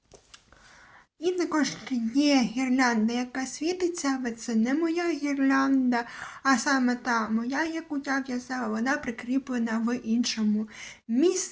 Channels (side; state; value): both; identical; correlation 1.00